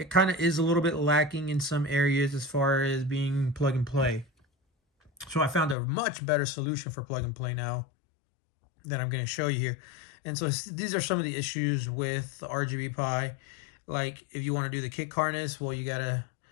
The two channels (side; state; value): right; drops out; at 5.8 s